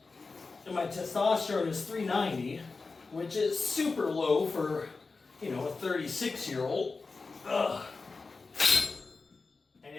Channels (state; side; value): quieter; right; 4.1 dB